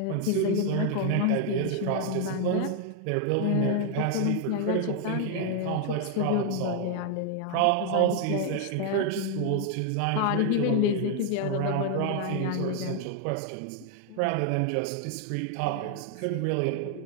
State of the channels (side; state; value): both; different; correlation 0.00